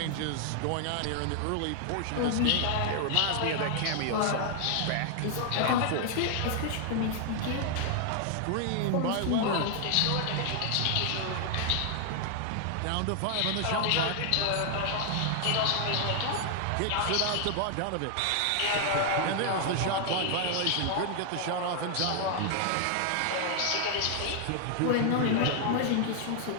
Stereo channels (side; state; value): both; different; correlation 0.00